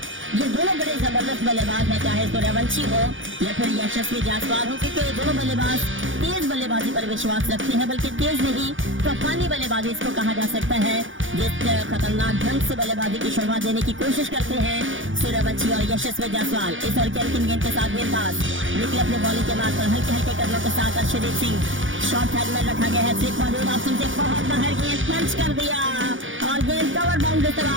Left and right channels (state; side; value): late; left; 0.57 ms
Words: ये दोनों बड़े जबरदस्त बल्लेबाज हैं, चाहे सूर्यवंशी हो या फिर यशस्वी जायसवाल हो, क्योंकि ये दोनों बल्लेबाज तेज बल्लेबाजी पर विश्वास रखते हैं, बल्कि तेज नहीं तूफानी बल्लेबाजी इसको कहा जा सकता है, जिस खतरनाक ढंग से बल्लेबाजी की शुरुआत देने की कोशिश करते हैं सूर्यवंशी और यशस्वी जायसवाल। इस ओवर के अंतिम गेंद के साथ गेंदबाज निकले अपने बॉलिंग के मार्ग पर हल्के हल्के कदमों के साथ अर्शदीप सिंह शॉर्ट हेड में रखा गया है, स्लिप मौजूद ऑप्शन से बहुत बाहर गेंद पंच कर दिया और गेंद कवर बाउंड्री से